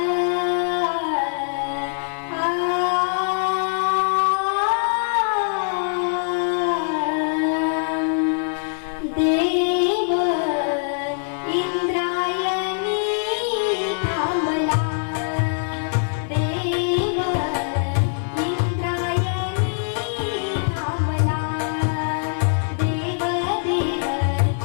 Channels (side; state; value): right; silent; digital silence